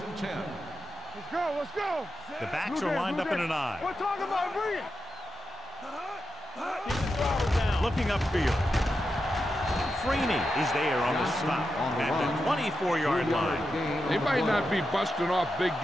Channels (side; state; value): both; normal; correlation 0.88